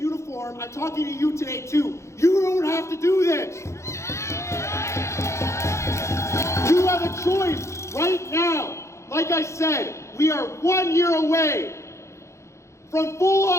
I'm talking to you today too. You don't have to do this. You have a choice right now. Like I said, we are 1 year away from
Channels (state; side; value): late; right; 0.14 ms